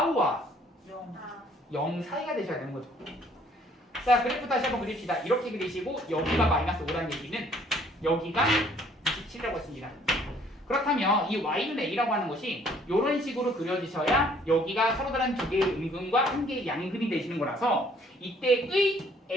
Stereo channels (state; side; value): normal; both; correlation 0.61